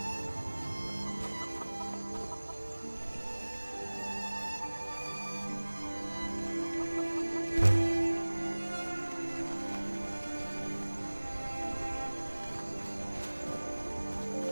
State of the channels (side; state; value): both; inverted; correlation -1.00